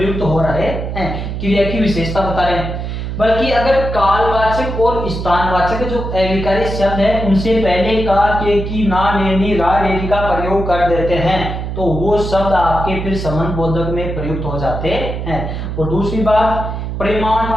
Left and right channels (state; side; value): noise; right; hum, 5 dB below the sound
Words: हो रहे हैं, क्रिया की विशेषता बता रहे हैं। बल्कि अगर कालवाचक और स्थानवाचक जो अविकारी शब्द है उनसे पहले का, के, की, ना, ने, नी, रा, रेरी का प्रयोग कर देते हैं तो वो शब्द आपके फिर संबंध बोधक में प्रयुक्त हो जाते हैं। और दूसरी बात,